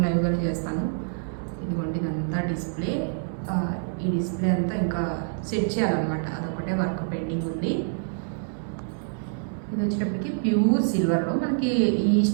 లైవ్ కానీ చేస్తాను. ఇదిగోండి, ఇదంతా డిస్ప్లే. ఈ డిస్ప్లే అంతా ఇంకా సెట్ చేయాలన్నమాట, అదొకటే వర్క్ పెండింగ్ ఉంది. ఇది వచ్చేటప్పటికి ప్యూర్ సిల్వర్లో మనకి ఈ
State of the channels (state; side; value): silent; left; digital silence